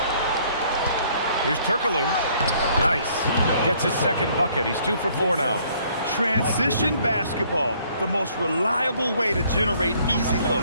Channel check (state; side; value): inverted; both; correlation -0.62